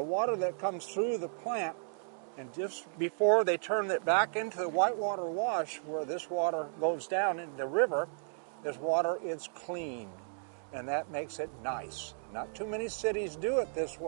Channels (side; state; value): left; silent; digital silence